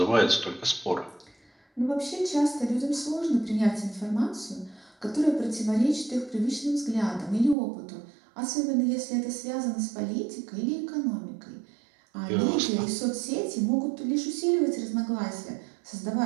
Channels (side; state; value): left; drops out; at 7.6 s